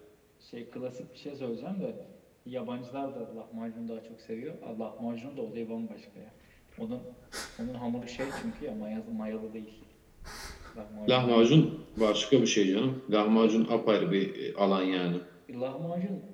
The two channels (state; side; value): identical; both; correlation 1.00